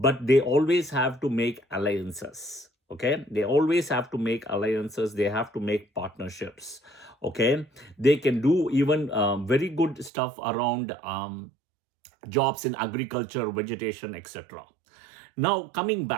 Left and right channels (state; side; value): drops out; left; at 10.1 s